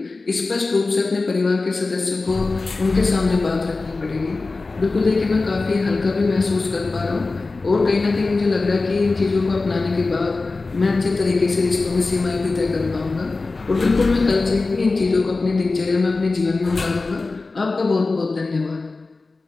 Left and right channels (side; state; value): right; quieter; 3.6 dB